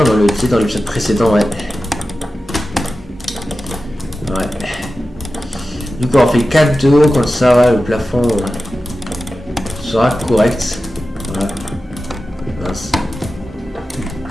dans l'épisode précédent, ouais. Ouais. Du coup, on fait 4 de haut, comme ça, ouais, le plafond sera correct. Voilà. Mince.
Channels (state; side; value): normal; both; correlation 0.94